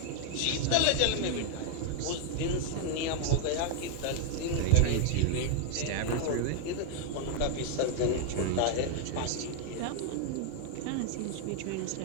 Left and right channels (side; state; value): both; different; correlation 0.00